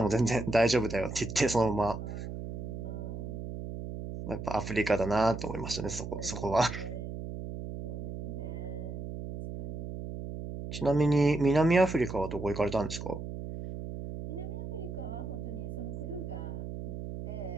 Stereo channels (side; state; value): right; noise; hum, 7 dB below the sound